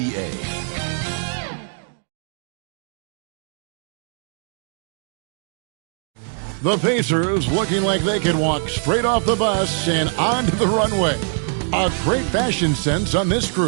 The Pacers looking like they could walk straight off the bus and onto the runway. A great fashion sense on this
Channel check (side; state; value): left; silent; 64 dB below the other